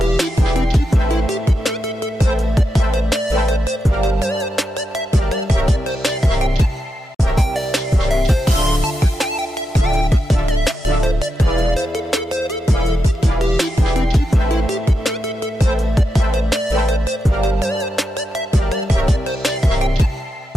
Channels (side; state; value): both; normal; correlation 0.86